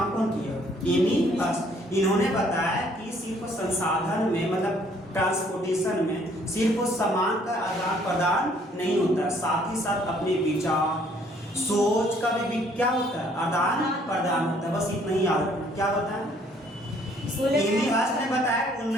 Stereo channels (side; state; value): both; normal; correlation 0.62